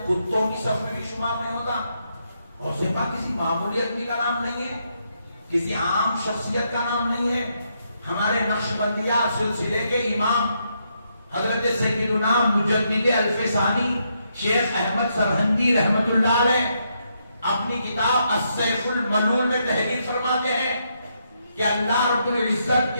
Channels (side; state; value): both; inverted; correlation -0.78